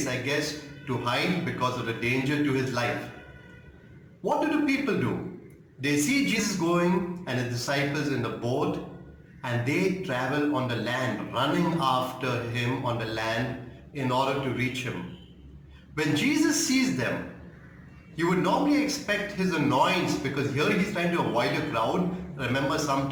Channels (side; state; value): both; identical; correlation 1.00